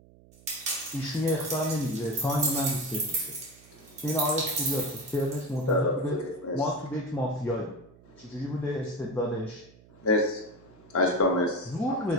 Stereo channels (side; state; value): right; noise; hum, 25 dB below the sound